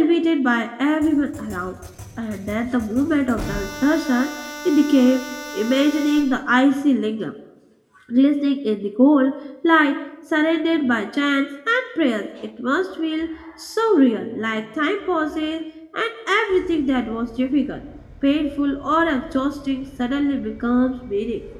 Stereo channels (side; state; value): both; identical; correlation 1.00